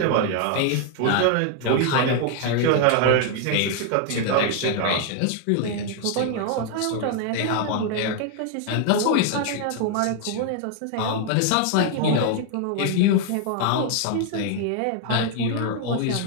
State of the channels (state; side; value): different; both; correlation 0.00